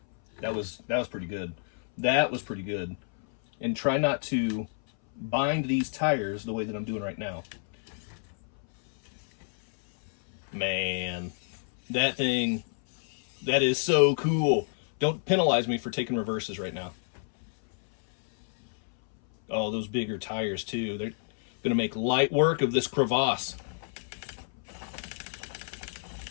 That was pretty good. That was pretty good. And try not to bind these tires the way that I'm doing right now. Man, that thing, that is so cool. Don't penalize me for taking reverses right now. Oh, those bigger tires too. They're going to make light work of this crevasse.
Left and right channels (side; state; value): right; silent; 58 dB below the other